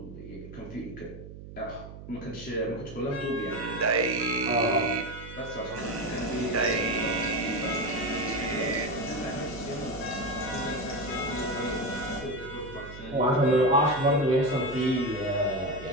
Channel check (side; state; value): right; noise; hum, 13 dB below the sound